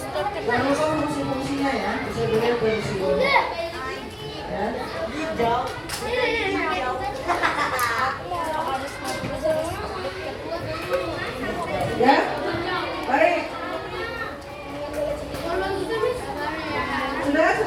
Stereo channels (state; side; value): identical; both; correlation 1.00